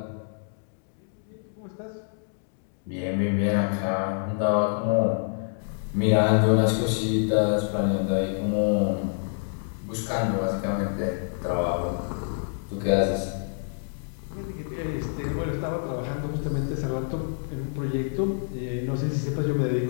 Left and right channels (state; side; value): silent; right; digital silence